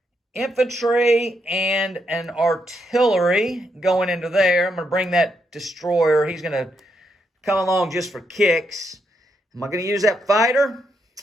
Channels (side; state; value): both; normal; correlation 0.79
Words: infantry and an artillery going into there. I'm going to bring that destroyer. He's going to come along just for kicks. Am I going to use that fighter?